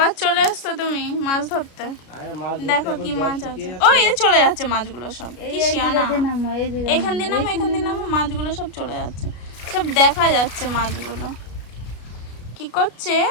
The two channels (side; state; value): right; late; 33 ms